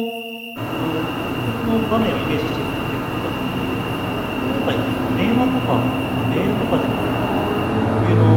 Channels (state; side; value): identical; both; correlation 1.00